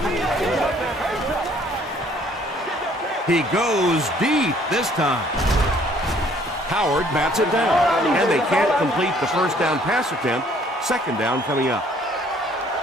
He goes deep this time. Howard bats it down, and they can't complete the first down pass attempt. Second down coming up.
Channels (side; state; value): both; normal; correlation 0.60